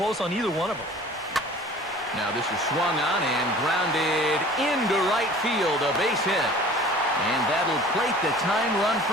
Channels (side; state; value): both; normal; correlation 0.46